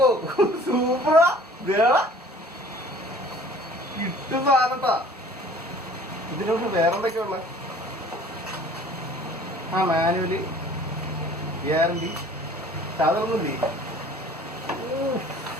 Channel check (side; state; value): both; normal; correlation 0.50